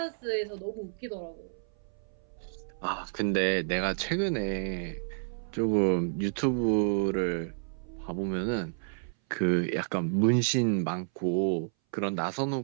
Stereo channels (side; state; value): left; silent; 58 dB below the other